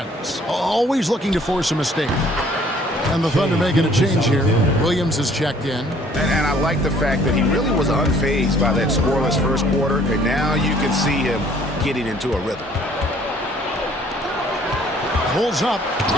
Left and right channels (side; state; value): both; normal; correlation 0.58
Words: Always looking to force a mistake. And the Thunder making a change here. Williams is checked in. And I like the fact that he really was unfazed by that scoreless first quarter. And now you can see him getting into a rhythm. Pulls up.